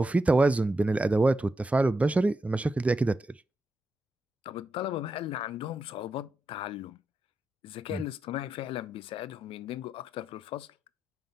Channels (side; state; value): both; normal; correlation 0.86